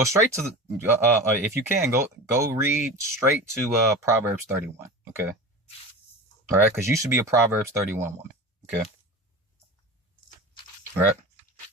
straight to the if you can go read straight to Proverbs 31. Okay, all right, because you should be a Proverbs 31 woman. Okay, all right.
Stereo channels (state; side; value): normal; both; correlation 0.31